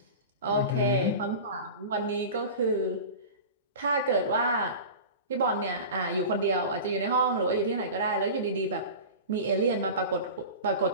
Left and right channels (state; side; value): inverted; both; correlation -0.32